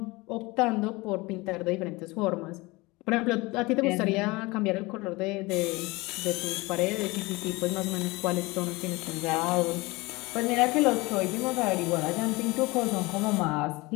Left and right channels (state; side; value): quieter; right; 23.1 dB